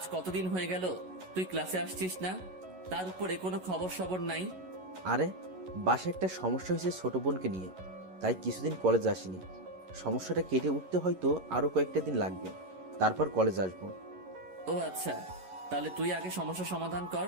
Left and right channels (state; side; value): late; left; 11 ms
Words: কতদিন হয়ে গেল তুই ক্লাসে আসছিস না, তার উপরে কোনো খবর সবর নাই। আরে বাসায় একটা সমস্যা হয়েছে ছোট বোনকে নিয়ে, তাই কিছুদিন কলেজ আসিনি। সমস্যাটা কেটে উঠতে হয়তো আরও কয়েকটা দিন লাগবে, তারপর কলেজ আসবো। ও আচ্ছা, তাহলে তুই আগে সমস্যা সমাধান কর,